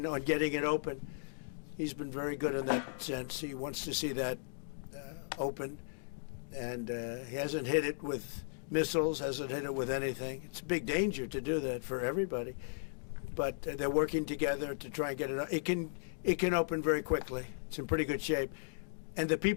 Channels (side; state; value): right; silent; digital silence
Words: on getting it open. He's been very good in that sense. He wants to see that open. And he hasn't hit it with missiles, hasn't hit it with anything. It's a big danger to do that for everybody. But they're working together to try and get it. It can open very quickly. It's in pretty good shape. And the